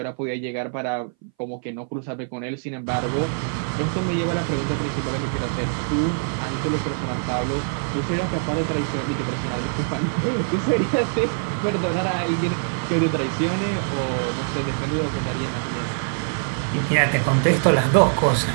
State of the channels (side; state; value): left; silent; 60 dB below the other